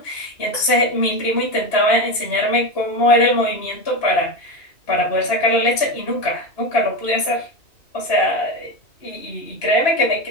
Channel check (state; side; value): late; right; 2.9 ms